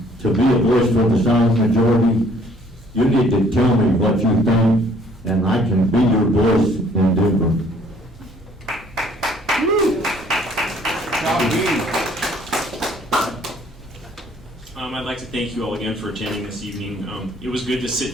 to be a voice for the silent majority, you need to tell me what you think, and I can be your voice in Denver. I'd like to thank you all again for attending this evening. It was good to sit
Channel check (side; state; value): both; normal; correlation 0.60